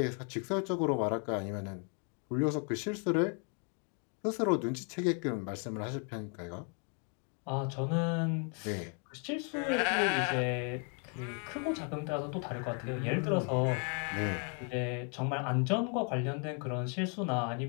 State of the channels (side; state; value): right; quieter; 39.8 dB